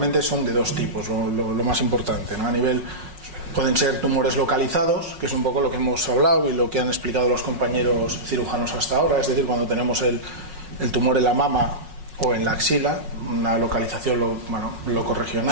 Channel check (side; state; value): left; late; 5.5 ms